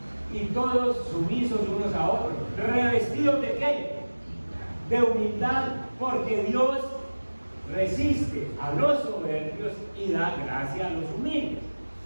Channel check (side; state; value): both; inverted; correlation -1.00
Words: y todos sumisos unos a otros, revestidos de ¿qué? De humildad, porque Dios resiste a los soberbios y da gracia a los humildes.